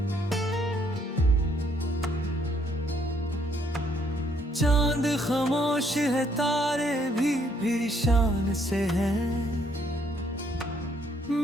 चांद खामोश है, तारे भी शान से हैं।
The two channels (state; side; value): normal; both; correlation 0.68